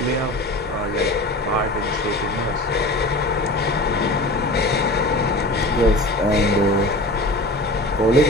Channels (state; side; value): normal; both; correlation 0.36